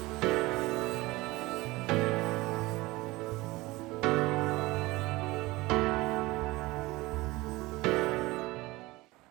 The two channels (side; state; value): left; quieter; 20.7 dB